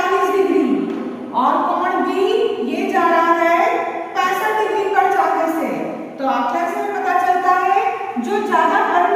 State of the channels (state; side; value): identical; both; correlation 1.00